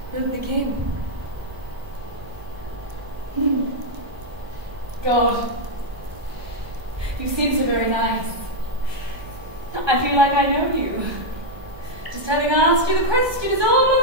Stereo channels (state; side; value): late; left; 1.2 ms